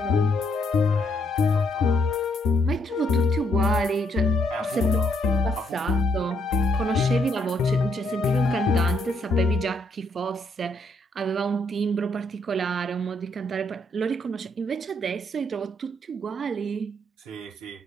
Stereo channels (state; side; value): normal; both; correlation 0.74